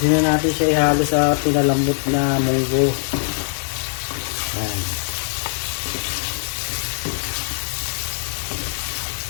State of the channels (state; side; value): silent; right; digital silence